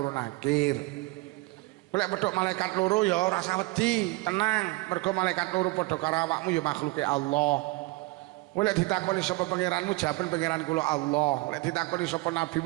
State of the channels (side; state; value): left; quieter; 22.6 dB